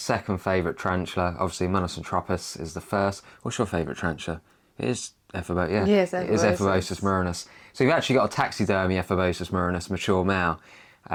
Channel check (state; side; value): identical; both; correlation 1.00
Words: favourite tarantula. Obviously, Monosantropus is the first. What's your favourite tarantula? It is Ephebopus, yeah. Yes, it is Ephebopus Murinus. So you've actually got a taxidermy Ephebopus Murinus, mature male.